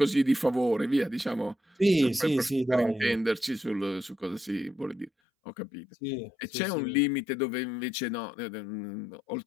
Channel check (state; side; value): drops out; right; at 5.1 s